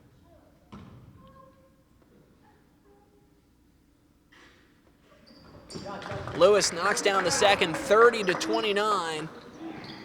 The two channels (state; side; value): identical; both; correlation 1.00